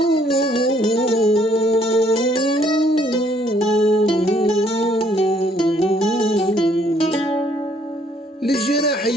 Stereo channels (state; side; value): normal; both; correlation 0.65